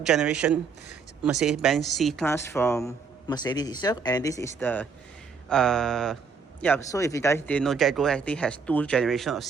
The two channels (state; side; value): quieter; left; 5.3 dB